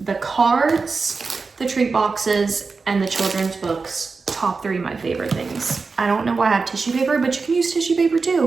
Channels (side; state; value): left; quieter; 4.4 dB